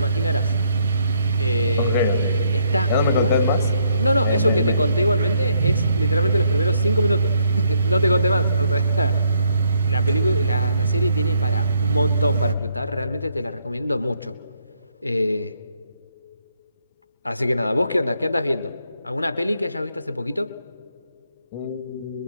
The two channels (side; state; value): both; inverted; correlation -0.70